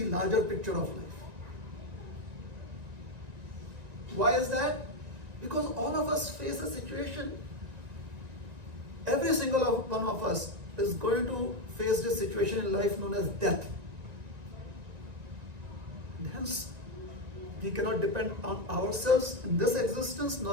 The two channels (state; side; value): late; left; 1.9 ms